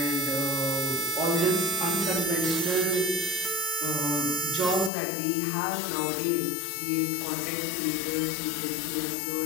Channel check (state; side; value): drops out; right; at 4.9 s